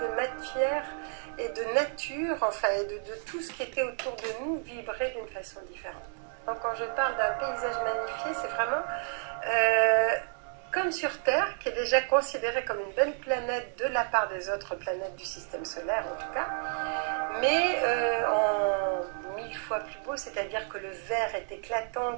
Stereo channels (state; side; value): silent; left; 57 dB below the other